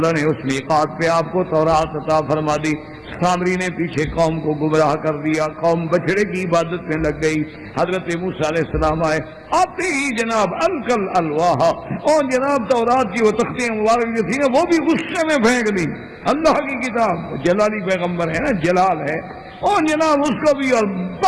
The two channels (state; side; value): identical; both; correlation 1.00